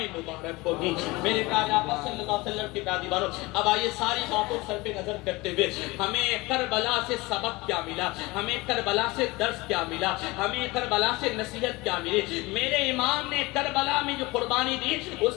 مبارک ہو. میرے پیارے آقا صلی اللہ علیہ وسلم کے پیارے باروں اب آئیے ساری باتوں سر پہ نظر کرتے ہوئے ہمیں کربلا سے سبق کیا ملا, ہمیں کربلا سے درس کیا ملا, ہمیں کربلا سے نصیحت کیا ملی. میرے امام نے کربلا میں جو قربانی دی اس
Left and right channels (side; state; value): right; quieter; 22.5 dB